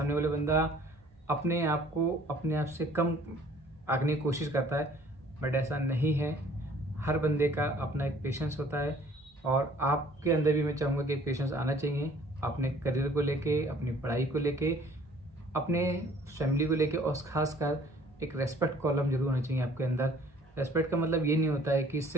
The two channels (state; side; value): normal; both; correlation 0.55